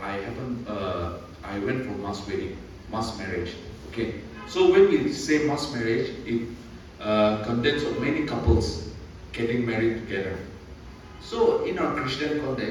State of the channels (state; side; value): identical; both; correlation 1.00